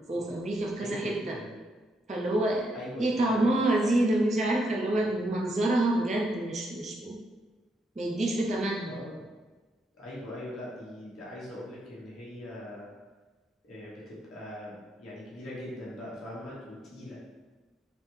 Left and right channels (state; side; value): normal; both; correlation 0.78